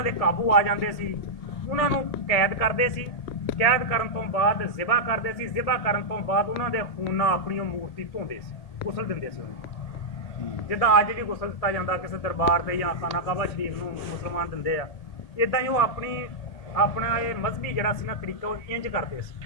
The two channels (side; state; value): right; late; 1.8 ms